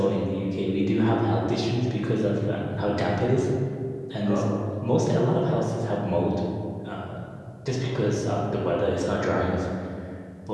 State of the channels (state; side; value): identical; both; correlation 1.00